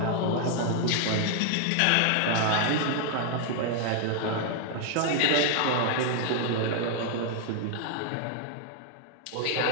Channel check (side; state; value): both; different; correlation 0.00